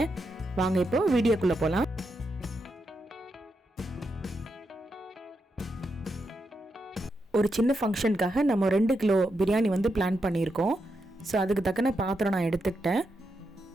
வாங்க இப்போ வீடியோக்குள்ள போலாம். ஒரு சின்ன ஃபங்க்ஷனுக்காக நம்ம 2 கிலோ பிரியாணி பிளான் பண்ணியிருக்கோம். ஸோ அதுக்கு தக்கன பாத்திரம் நான் எடுத்துக்கிட்டேன்.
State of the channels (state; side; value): normal; both; correlation 0.84